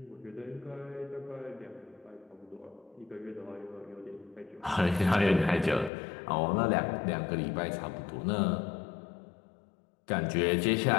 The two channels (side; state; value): right; drops out; at 5.9 s